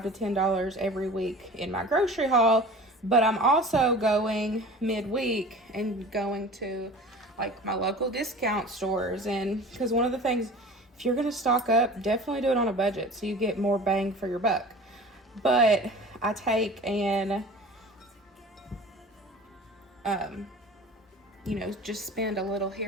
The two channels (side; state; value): both; normal; correlation 0.39